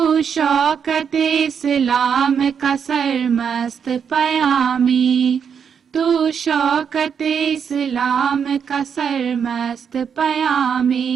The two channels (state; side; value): quieter; left; 7.1 dB